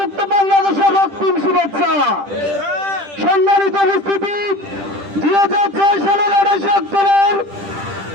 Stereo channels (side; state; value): left; late; 10 ms